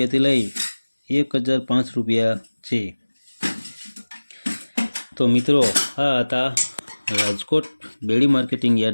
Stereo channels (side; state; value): both; inverted; correlation -1.00